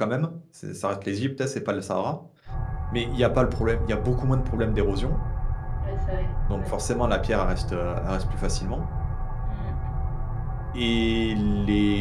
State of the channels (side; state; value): both; identical; correlation 1.00